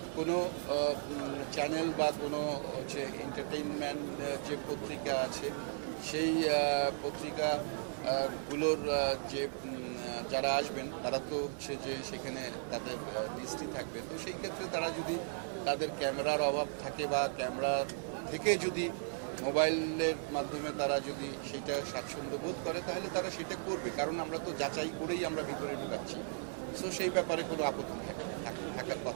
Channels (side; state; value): left; silent; 54 dB below the other